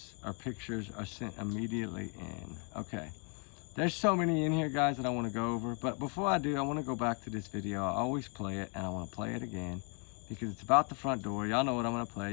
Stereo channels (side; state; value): right; quieter; 37.2 dB